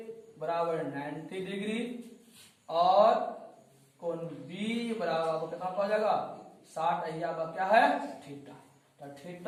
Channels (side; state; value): both; identical; correlation 1.00